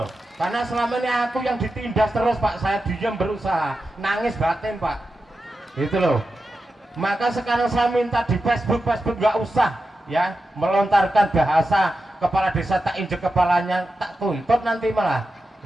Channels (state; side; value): normal; both; correlation 0.90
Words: Karena selama ini aku yang ditindas terus Pak, saya diam berusaha, nangis batin Pak. Itu loh. Maka sekarang saya minta di Facebook nggak usah ya melontarkan bahasa kepala desa tak injek kepalanya, tak tuntut nanti malah.